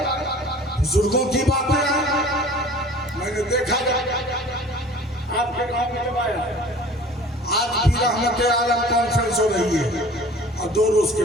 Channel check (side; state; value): both; normal; correlation 0.46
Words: بزرگوں کی باتیں آئے. میں نے دیکھا آپ کے گاؤں میں جب آیا آج بھی رحمت عالم کانفرنس ہو رہی ہے اور 2 روز کے